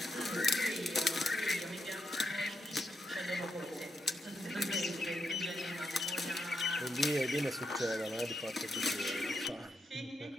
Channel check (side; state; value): both; normal; correlation 0.82